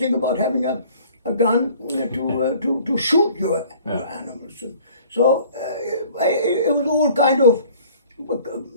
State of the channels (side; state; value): both; inverted; correlation -0.51